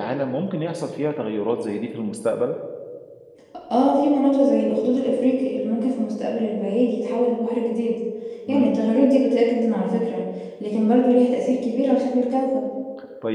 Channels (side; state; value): both; identical; correlation 1.00